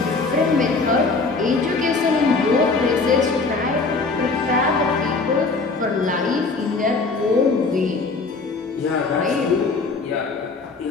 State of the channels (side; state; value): right; quieter; 4.0 dB